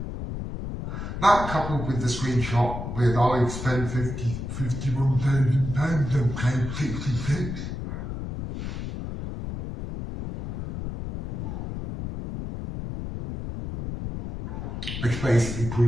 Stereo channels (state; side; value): noise; left; rumble, 6 dB below the sound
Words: That coupled with the screenshot with I've spent £51,000 on claim 66. Which basically